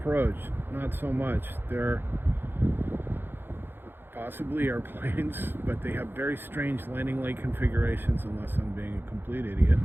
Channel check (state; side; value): late; left; 0.10 ms